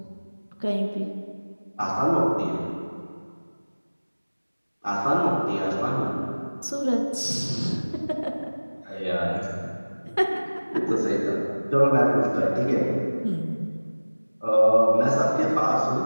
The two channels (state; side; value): inverted; both; correlation -1.00